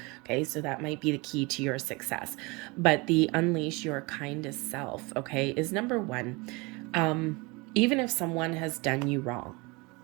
Okay, so that might be the key to your success. But the unleash your kindest self, okay, is number one. Even if someone has done you wrong,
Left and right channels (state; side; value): quieter; left; 26.4 dB